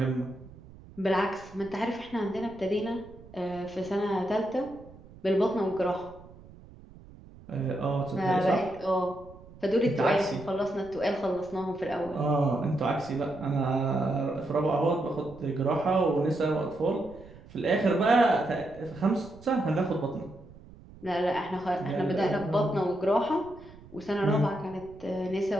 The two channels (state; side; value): noise; right; rumble, 20 dB below the sound